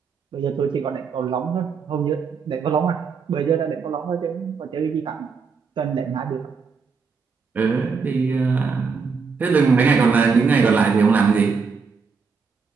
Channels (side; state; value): left; quieter; 5.3 dB